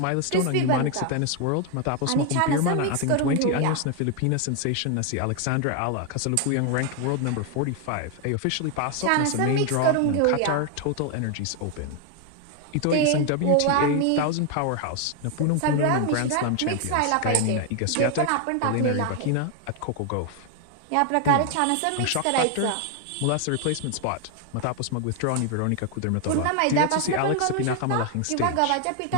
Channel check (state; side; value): different; both; correlation 0.01